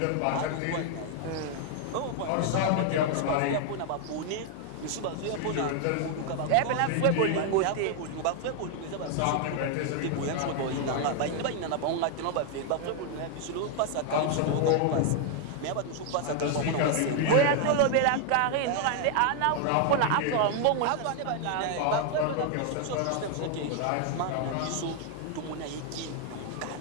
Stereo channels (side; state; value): both; different; correlation 0.00